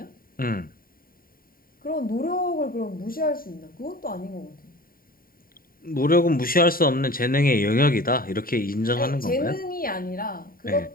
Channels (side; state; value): right; late; 0.42 ms